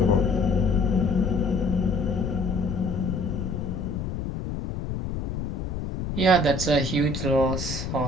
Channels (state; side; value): noise; left; rumble, 4 dB below the sound